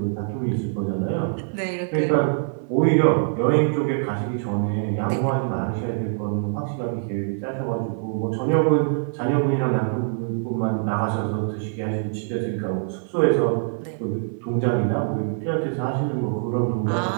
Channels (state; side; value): silent; left; 55 dB below the other